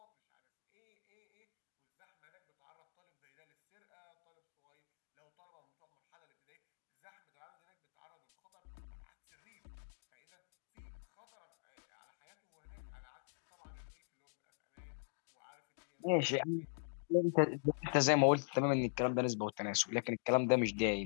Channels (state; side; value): silent; right; digital silence